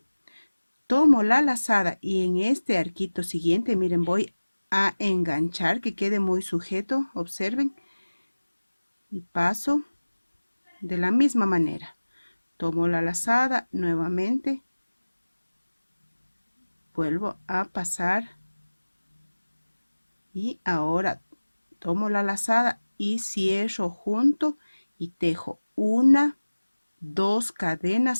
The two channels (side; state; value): both; inverted; correlation -1.00